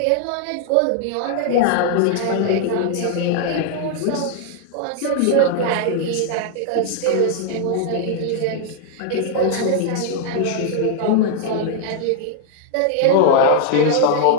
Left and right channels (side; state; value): both; different; correlation 0.00